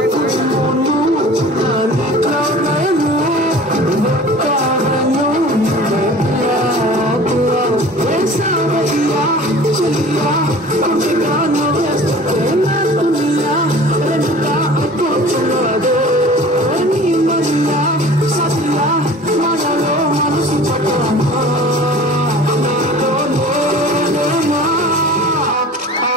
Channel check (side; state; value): both; normal; correlation 0.43